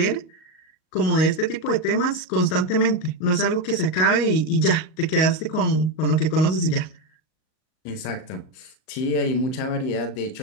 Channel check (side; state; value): right; late; 38 ms